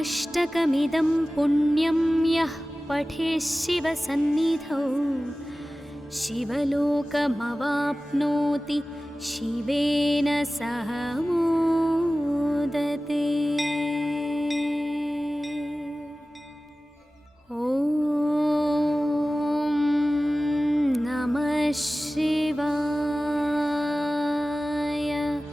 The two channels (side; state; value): both; normal; correlation 0.97